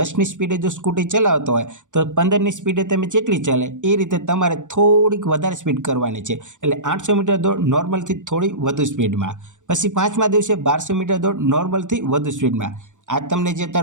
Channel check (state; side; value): late; left; 0.86 ms